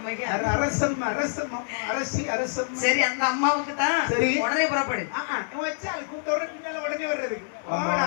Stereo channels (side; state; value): right; silent; digital silence